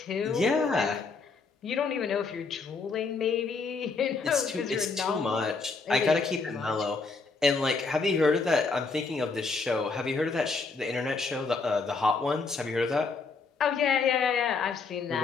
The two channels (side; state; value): right; quieter; 4.4 dB